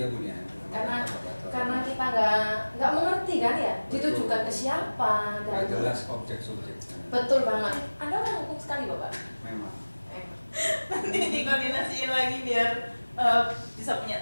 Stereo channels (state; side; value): inverted; both; correlation -1.00